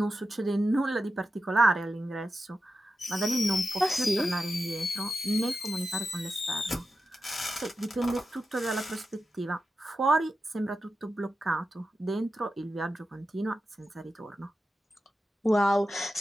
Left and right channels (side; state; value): both; normal; correlation 0.91